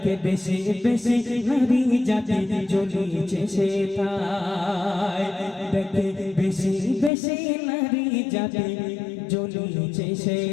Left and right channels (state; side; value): drops out; right; at 7.1 s